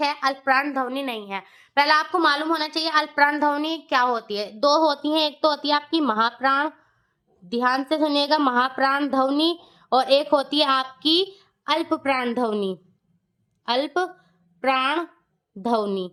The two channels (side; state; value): both; identical; correlation 1.00